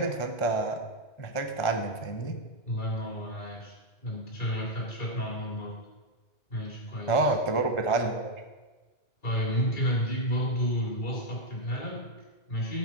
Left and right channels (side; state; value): right; late; 1.5 ms